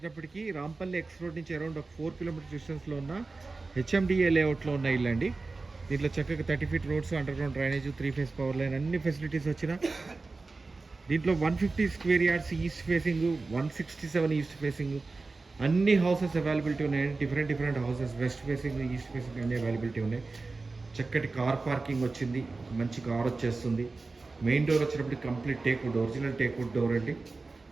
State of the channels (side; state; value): left; quieter; 3.7 dB